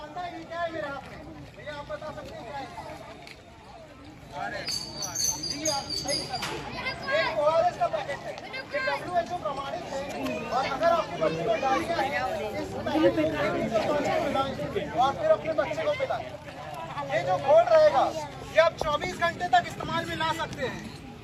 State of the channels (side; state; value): both; identical; correlation 1.00